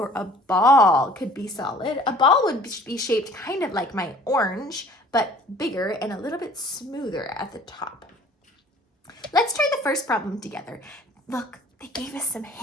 a ball could be solid. A ball would be shaped kind of like my orange, but bigger and a little bit smoother at the top. Let's try the first problem together. Look, they gave us some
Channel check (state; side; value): normal; both; correlation 0.51